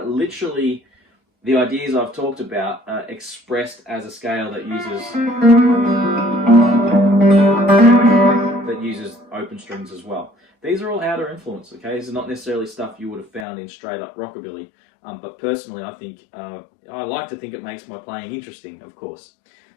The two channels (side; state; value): right; drops out; at 13.5 s